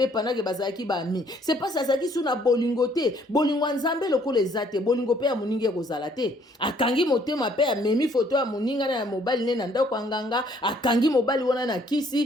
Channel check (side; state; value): both; normal; correlation 0.63